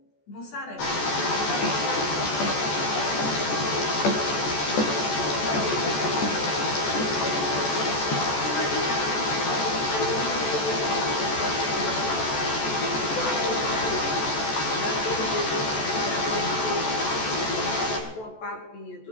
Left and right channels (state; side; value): late; right; 14 ms